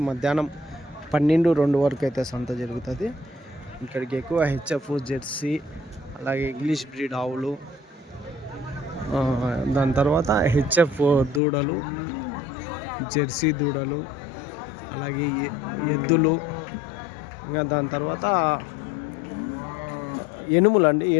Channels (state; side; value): drops out; right; at 11.4 s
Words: మధ్యాహ్నం 12-2 వరకు అయితే సంత జరుగుతుంది. ఇక్కడికి ఎక్కువ హెచ్ఎఫ్, జెర్సీ, అలాగే ఇంగ్లీష్ బ్రీడ్ ఆవులు, దాని తర్వాత హెచ్ఎఫ్ దూడలు, జెర్సీ దూడలు, అలాగే ఎద్దులు, ఇంకా దాని తర్వాత ఎనుములు అండి.